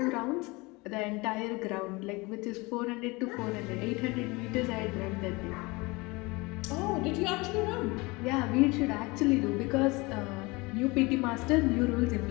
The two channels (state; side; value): quieter; right; 24.6 dB